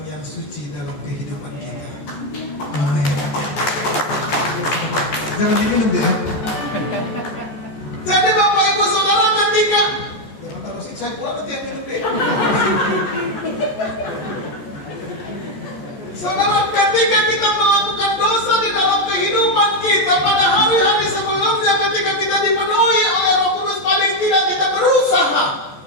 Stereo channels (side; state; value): right; late; 14 ms